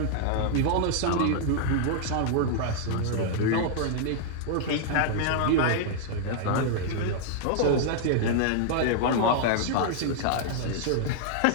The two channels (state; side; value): different; both; correlation -0.01